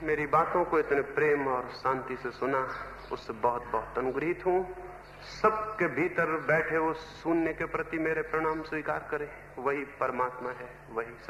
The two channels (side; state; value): both; identical; correlation 1.00